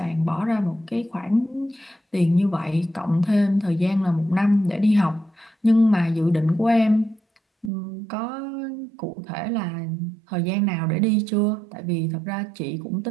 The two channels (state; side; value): drops out; left; at 7.7 s